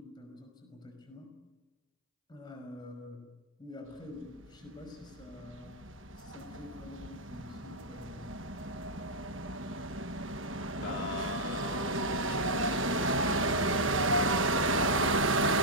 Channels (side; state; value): both; normal; correlation -0.07